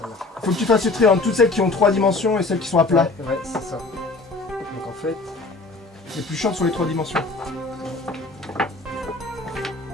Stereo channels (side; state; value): right; quieter; 3.4 dB